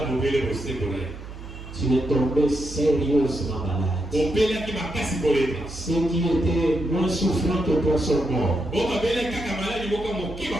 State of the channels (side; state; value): right; noise; hum, 13 dB below the sound